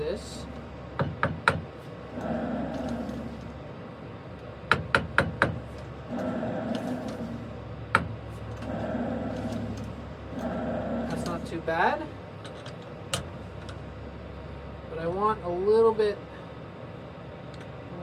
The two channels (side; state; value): both; identical; correlation 1.00